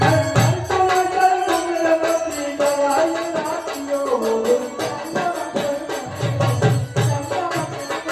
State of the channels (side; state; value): both; identical; correlation 1.00